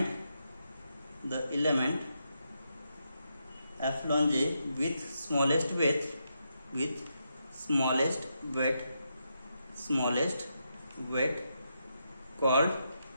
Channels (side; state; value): both; inverted; correlation -0.83